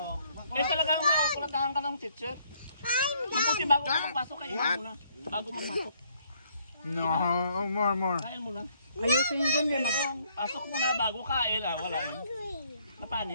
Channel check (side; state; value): both; inverted; correlation -0.67